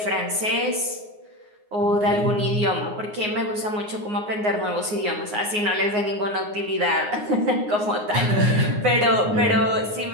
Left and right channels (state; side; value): late; left; 9.6 ms